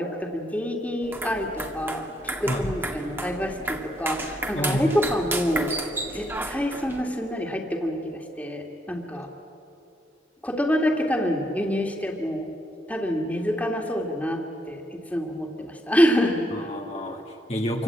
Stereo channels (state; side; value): normal; both; correlation 0.75